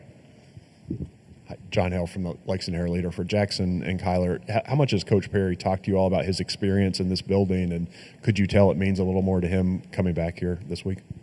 Hi, John Hale from the Lexington Herald-Leader. For Jackson and Kyler, how much has Coach Perry talked to you all about his experience in this building, and could you tell it means a little more to him coming back here this week?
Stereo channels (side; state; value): both; identical; correlation 1.00